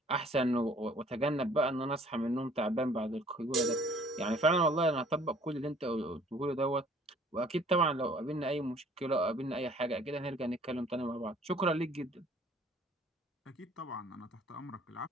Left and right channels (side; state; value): both; normal; correlation 0.55